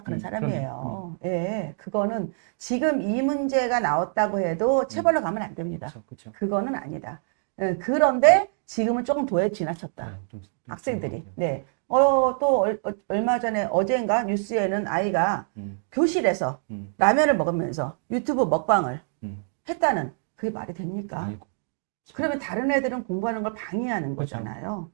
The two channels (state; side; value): silent; left; digital silence